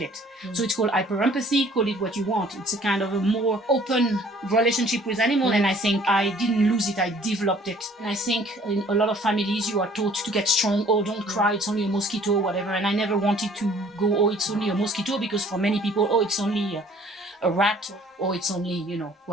So it's called hyperempathy, call it what you want. It's a kind of a more open relationship with animal, and I think I didn't lose it, I developed it. And I think in a lot of families you are taught to get strong, oh, don't cry, it's only a mosquito, whatever. And I never wanted to go, oh, it's only a mosquito, because for many people, oh, it's only a rat, or it's only,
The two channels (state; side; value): normal; both; correlation 0.55